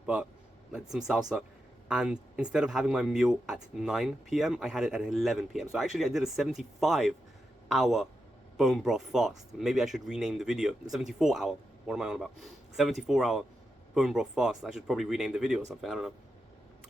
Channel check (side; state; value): both; normal; correlation 0.87